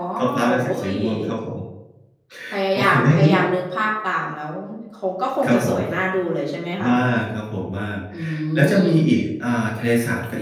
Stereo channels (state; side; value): identical; both; correlation 1.00